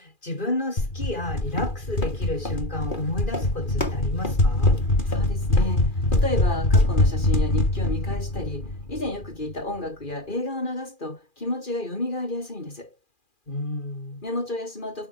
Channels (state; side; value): late; right; 2.4 ms